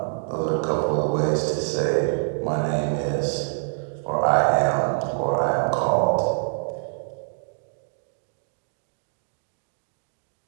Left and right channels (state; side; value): silent; left; digital silence